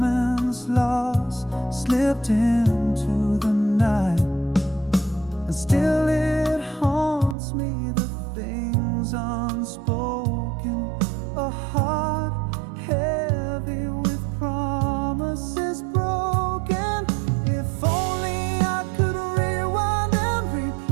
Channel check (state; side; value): drops out; left; at 7.4 s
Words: lost, slipped into the night. And still it haunts me, the things unspoken. A heart heavy with promises broken. If only I could rewind and